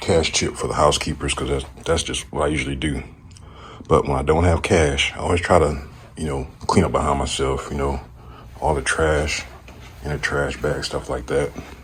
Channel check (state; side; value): identical; both; correlation 1.00